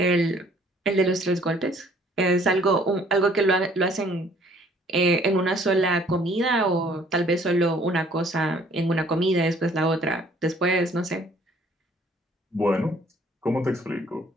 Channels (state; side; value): normal; both; correlation 0.59